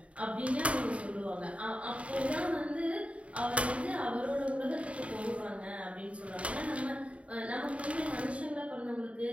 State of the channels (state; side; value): late; left; 0.064 ms